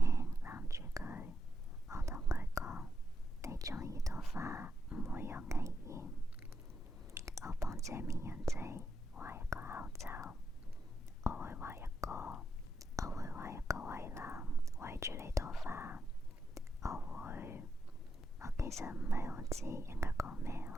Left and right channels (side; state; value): both; normal; correlation 0.83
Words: 攬住佢，我同佢講：你鍾意朵花唔會有危險。我幫這綿羊仔畫一個口罩，我會畫一個圍欄圍住呢朵花。我其實唔係好知應該講咩